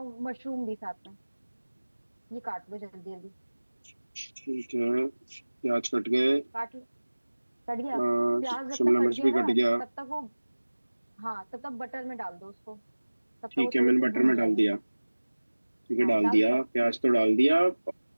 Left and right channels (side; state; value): both; inverted; correlation -1.00